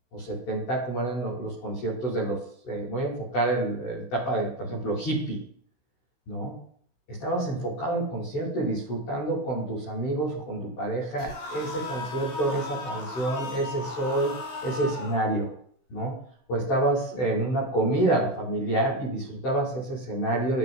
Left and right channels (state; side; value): late; right; 16 ms